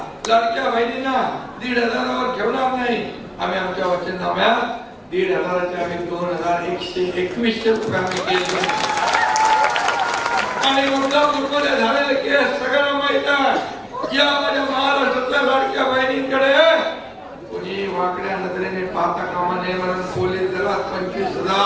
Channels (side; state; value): both; identical; correlation 1.00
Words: लाडक्या बहिणींना 1,500 ठेवणार नाही. आम्ही आमच्या वचननाम्यात 1,500 आम्ही 2,121 रुपये आम्ही केले. आणि मुद्दा झालेले केस सगळ्यांना माहित आहे. या माझ्या महाराष्ट्रातल्या लाडक्या बहिणींकडे कोणी वाकड्या नजरेने पाहता कामा नये. म्हणून पोलीस दलात